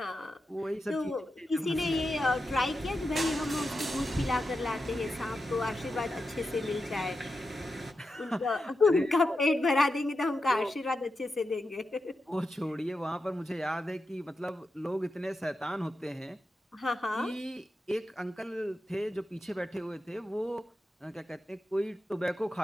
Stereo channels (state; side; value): normal; both; correlation 0.89